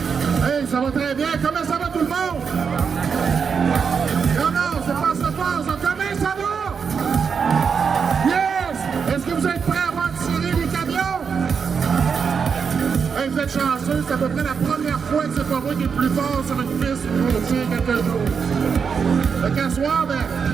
Hey, ça va très bien. Comment ça va tout le monde? Comment se passe? Comment ça va? Est-ce que vous êtes prêts à voir tirer les camions? Hey, vous êtes chanceux, c'est à peu près la première fois que c'est pas moi qui est plus fort sur une piste pour tirer quelque chose. Fait qu'à soir,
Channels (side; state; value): left; quieter; 6.2 dB